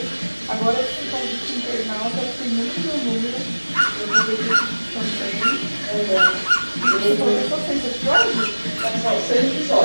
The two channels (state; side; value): inverted; both; correlation -1.00